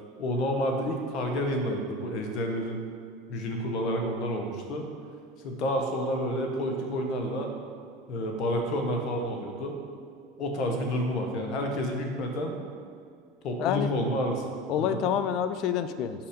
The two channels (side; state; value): both; normal; correlation 0.33